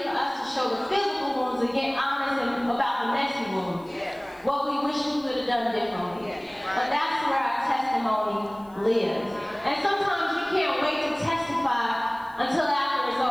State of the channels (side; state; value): left; noise; hiss, 29 dB below the sound